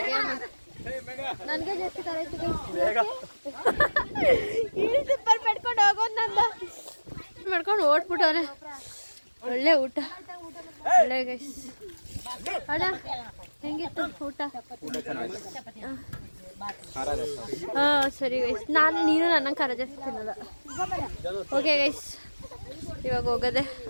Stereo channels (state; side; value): inverted; both; correlation -1.00